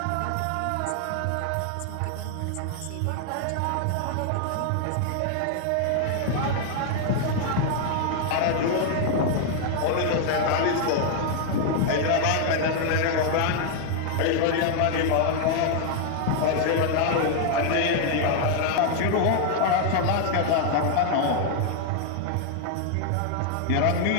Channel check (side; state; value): both; different; correlation 0.00